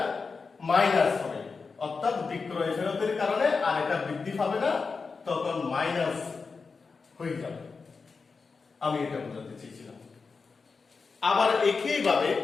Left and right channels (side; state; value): right; quieter; 4.7 dB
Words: মাইনাস হবে। অর্থাৎ বিক্রয় ফেরতের কারণে আর এটা বৃদ্ধি পাবে না, তখন মাইনাস হয়ে যাবে। আমি এটা বোঝাতে চেয়েছিলাম। আবার একইভাবে